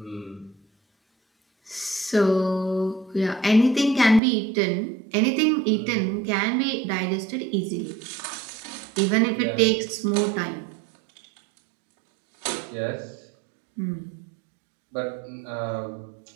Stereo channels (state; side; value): drops out; left; at 4.2 s